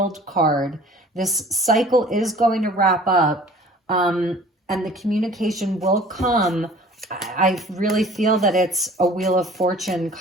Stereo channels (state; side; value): normal; both; correlation 0.48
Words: card. This cycle is going to wrap up, and the communication will come. I really feel that it's a Wheel of Fortune